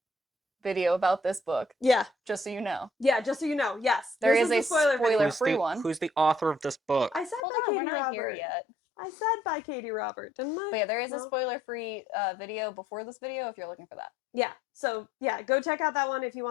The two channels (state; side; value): drops out; right; at 7.4 s